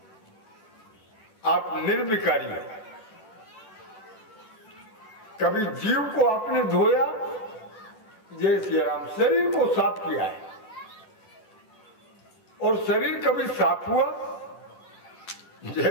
आप निर्विकारी हैं। कभी जीव को आपने धोया? जय श्री राम। शरीर को साफ किया है। और शरीर कभी साफ हुआ?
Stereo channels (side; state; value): right; late; 10 ms